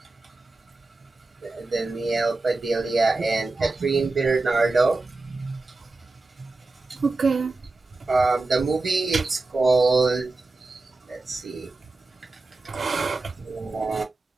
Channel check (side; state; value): left; quieter; 3.4 dB